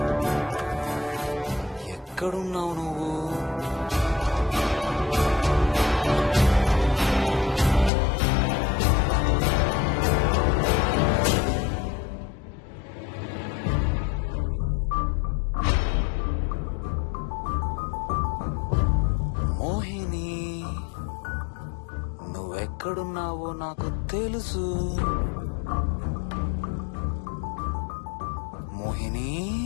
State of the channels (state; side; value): drops out; right; at 7.9 s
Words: ఎక్కడున్నావు నువ్వు? మోహిని, నువ్వెక్కడున్నావో నాకు తెలుసు. మోహిని,